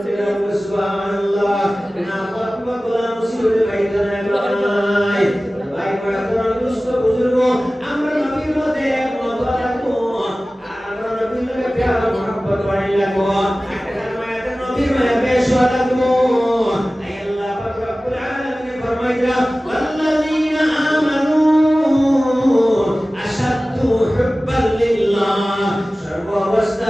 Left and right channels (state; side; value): normal; both; correlation 0.97